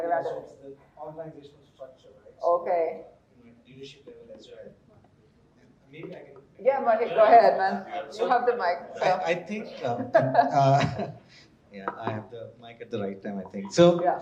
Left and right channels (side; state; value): both; identical; correlation 1.00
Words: around so it. it's the organizational structure, right? So, Okay. leadership level as well. Maybe I can. Yeah, Mohit, go ahead, man. You have the mic. So. I think, yeah, I have the mic at the right time, I think. So, yeah.